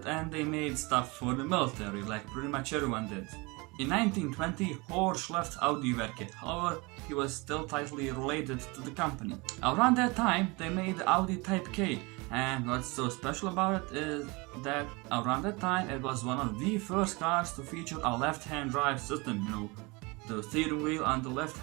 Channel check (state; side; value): quieter; left; 26.4 dB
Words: and they made stuff for the military, like pretty much everyone did. In 1920, Horsch left Audi Werke, however, he was still tightly related to the company. Around that time, they made the Audi Type K, and what's so special about it is that around that time it was one of the first cars to feature a left-hand drive system, the steering wheel on the left